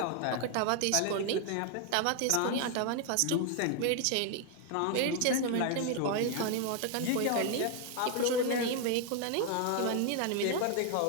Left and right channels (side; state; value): both; different; correlation 0.00